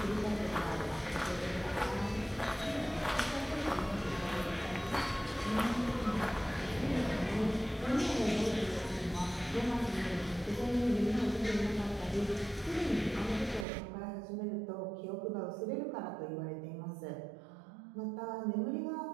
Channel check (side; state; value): left; drops out; at 13.7 s